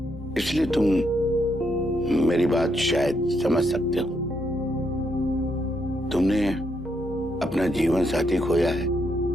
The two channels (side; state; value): both; normal; correlation 0.77